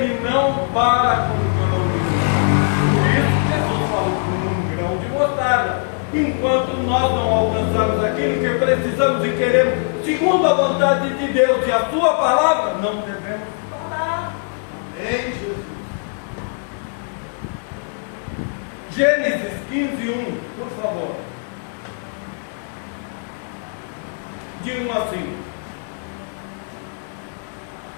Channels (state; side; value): silent; right; 65 dB below the other